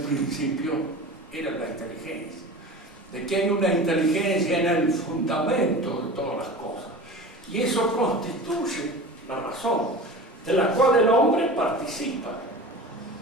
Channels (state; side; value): normal; both; correlation 0.35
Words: principio era la inteligencia, de que hay una inteligencia en el fundamento de todas las cosas. Y eso constituye la razón, de la cual el hombre participa.